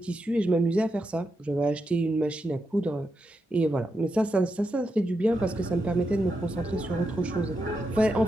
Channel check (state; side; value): normal; both; correlation 0.85